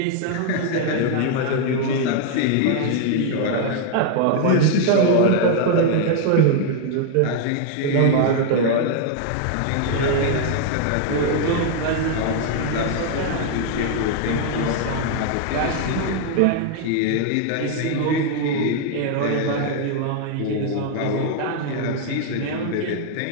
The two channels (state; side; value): different; both; correlation 0.00